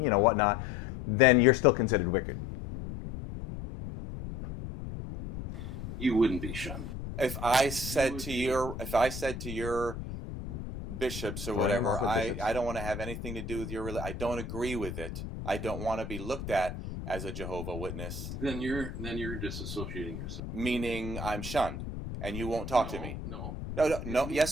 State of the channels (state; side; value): noise; left; rumble, 8 dB below the sound